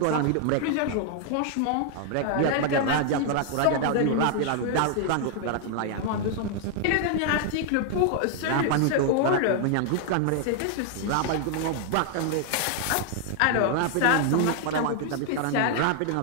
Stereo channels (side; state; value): both; different; correlation 0.00